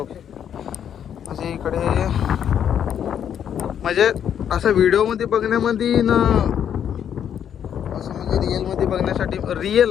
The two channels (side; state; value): right; quieter; 9.0 dB